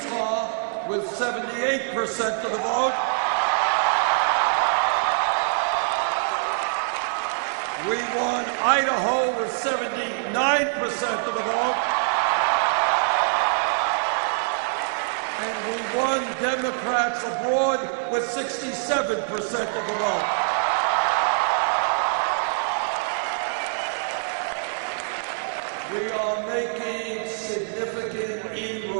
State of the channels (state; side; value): silent; left; digital silence